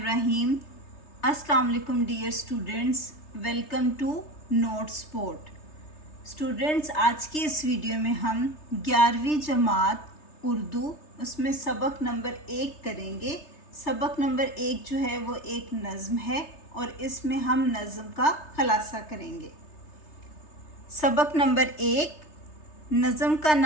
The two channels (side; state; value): right; late; 3.3 ms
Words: السلام علیکم dear students, welcome to note support. Students, آج کی اس ویڈیو میں ہم 11ویں جماعت اردو اس میں سبق نمبر 1 کریں گے۔ سبق نمبر 1 جو ہے وہ ایک نظم ہے اور اس میں ہم نظم کا خلاصہ کریں گے۔ سبق نمبر 1، نظم کا